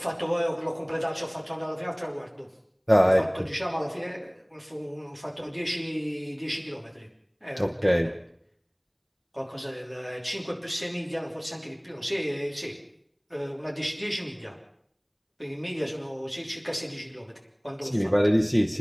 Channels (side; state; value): both; identical; correlation 1.00